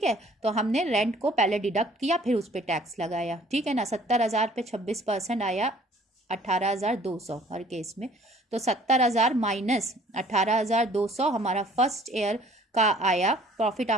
है। तो हमने रेंट को पहले डिडक्ट किया फिर उस पर टैक्स लगाया, ठीक है ना। 70,000 पे 26% आया 18,200 हर केस में, तो 70,000 माइनस 18,200 हमारा फर्स्ट ईयर का आया प्रॉफिट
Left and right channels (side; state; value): both; normal; correlation 0.55